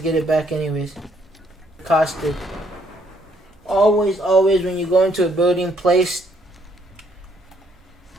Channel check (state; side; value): normal; both; correlation 0.68